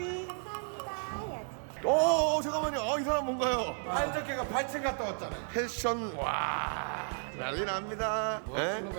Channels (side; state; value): left; silent; 56 dB below the other